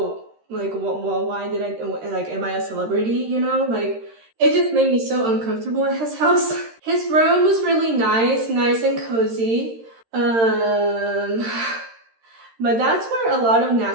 like, well, why did I, like, am I a celebrity, Like, it just made me so uncomfortable at his house. His room was really nice and cozy. But that's where a lot of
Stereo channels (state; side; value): late; left; 13 ms